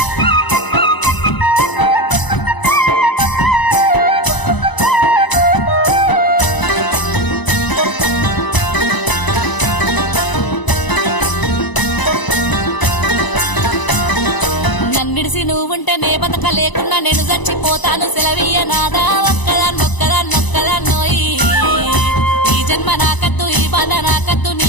నన్నిడిసి నువ్వుంటే నే బతక లేకున్నా నేను చచ్చిపోతాను సెలవీయ నాదా ఒక్కదాన్నొక్కదాన్నోయి ఈ జన్మ నాకద్దు ఈ బాధ నాకద్దు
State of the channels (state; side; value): late; right; 1.0 ms